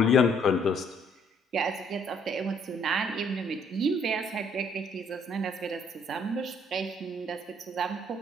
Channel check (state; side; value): normal; both; correlation 0.65